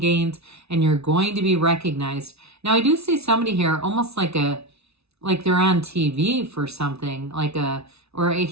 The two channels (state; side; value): late; left; 0.80 ms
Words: and you're going to be recognized. Now, I do see somebody here almost like they're on TV for something, or I